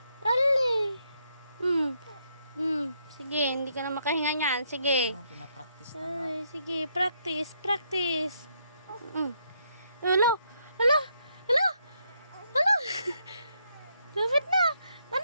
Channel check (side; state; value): both; inverted; correlation -0.75